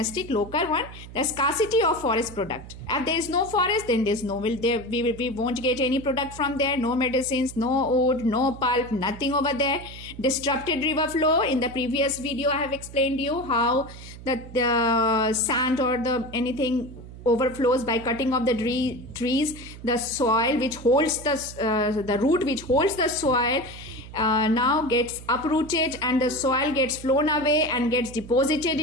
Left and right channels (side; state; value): right; noise; hum, 15 dB below the sound